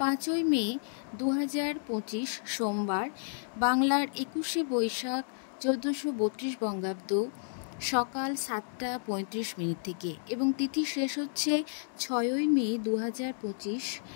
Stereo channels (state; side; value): silent; right; digital silence